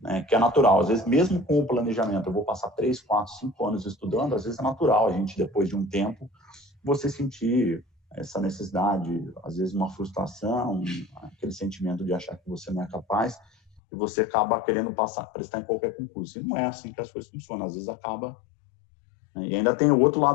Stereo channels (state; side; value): drops out; right; at 13.8 s